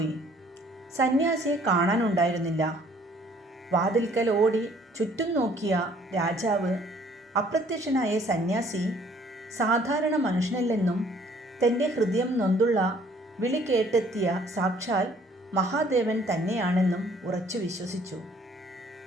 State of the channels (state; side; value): normal; both; correlation 0.59